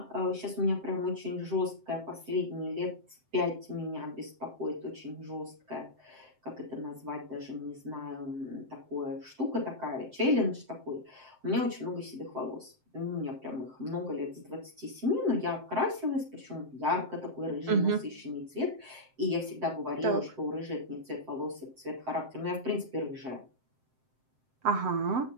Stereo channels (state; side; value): late; left; 7.7 ms